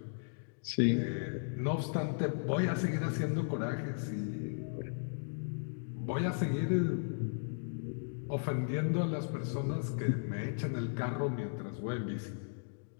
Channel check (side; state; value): right; silent; digital silence